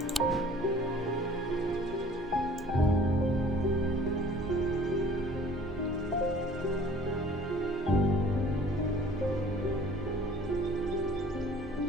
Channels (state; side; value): normal; both; correlation 0.51